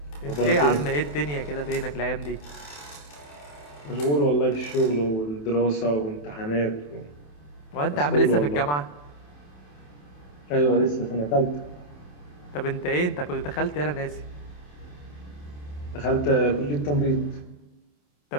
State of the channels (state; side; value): late; right; 27 ms